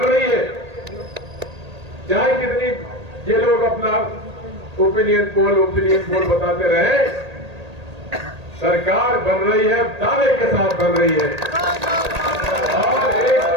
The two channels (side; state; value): left; late; 1.8 ms